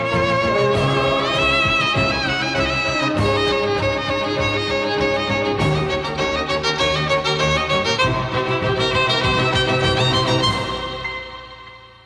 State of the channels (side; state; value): both; identical; correlation 1.00